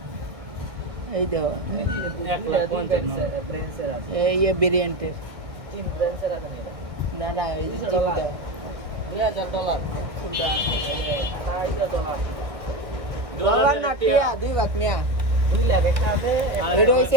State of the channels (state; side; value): late; left; 1.6 ms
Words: এই দেখো এই ভেরিয়েন্টের না না এই যে জিবি দাও ডলার না টিয়া 2 লাখ মিয়া। এটা